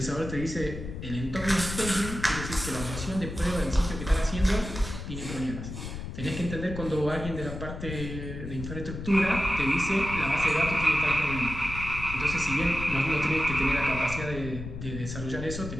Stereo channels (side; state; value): left; noise; rumble, 8 dB below the sound